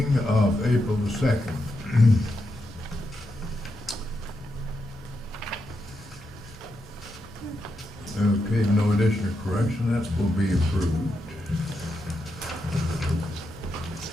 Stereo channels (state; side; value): normal; both; correlation 0.84